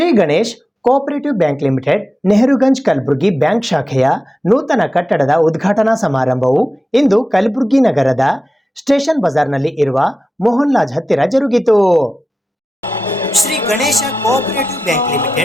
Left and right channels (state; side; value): normal; both; correlation 0.92